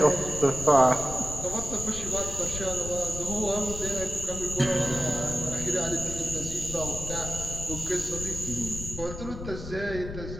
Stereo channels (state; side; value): noise; left; rumble, 9 dB below the sound